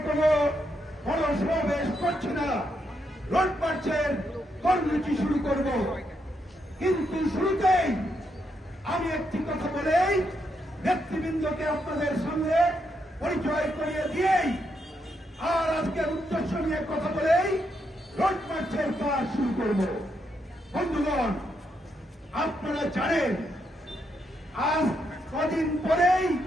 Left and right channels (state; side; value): normal; both; correlation 0.80